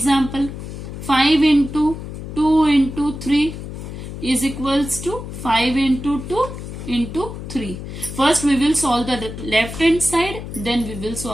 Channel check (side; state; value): left; noise; hum, 9 dB below the sound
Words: 5 into 2 into 3 is equals to 5 into 2 into 3. First we will solve the left hand side, then we will